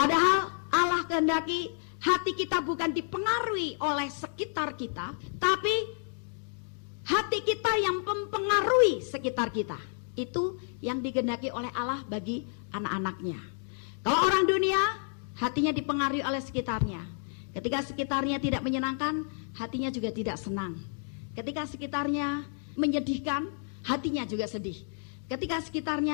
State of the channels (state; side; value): silent; right; 57 dB below the other